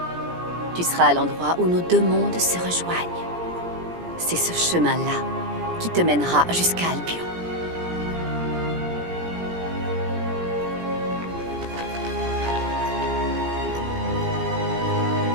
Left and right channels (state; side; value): late; left; 17 ms